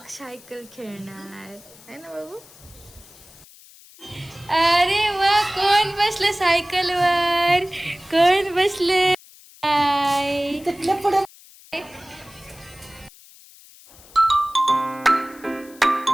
सायकल खेळणार आहे ना बाबू. अरे वा, कोण बसलं सायकलवर? कोण बसले?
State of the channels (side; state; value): left; noise; hiss, 23 dB below the sound